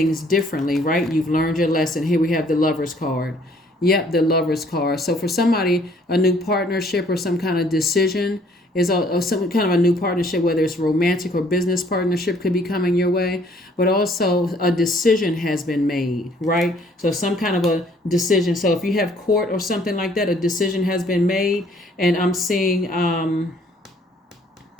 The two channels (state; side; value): normal; both; correlation 0.60